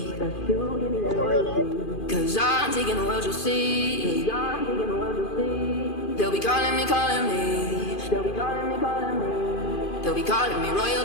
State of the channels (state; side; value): late; right; 2.5 ms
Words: That's you, give me that royalty. Cause I'm taking the world, you'll see. Cause I'm taking the world, you'll see. They'll be calling me, calling me. They'll be calling me, calling me. They'll be calling me